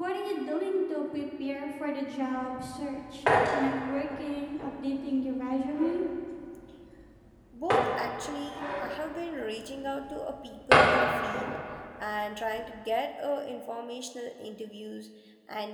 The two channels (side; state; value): both; identical; correlation 1.00